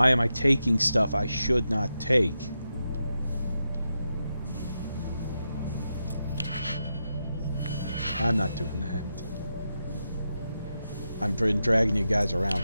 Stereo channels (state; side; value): inverted; both; correlation -0.87